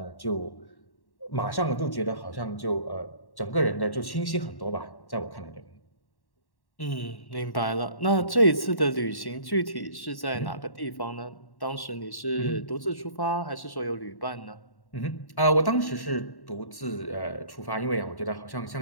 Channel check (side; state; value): right; late; 1.1 ms